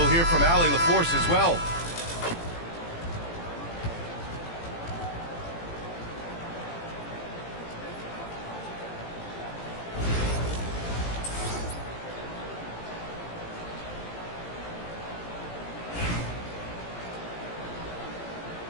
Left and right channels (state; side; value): late; right; 18 ms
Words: hear from Allie LaForce as well.